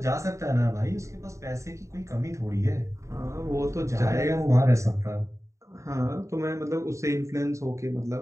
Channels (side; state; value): left; late; 0.14 ms